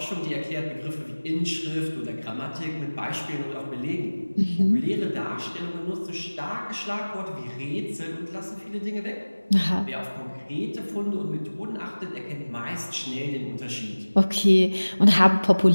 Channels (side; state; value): both; inverted; correlation -1.00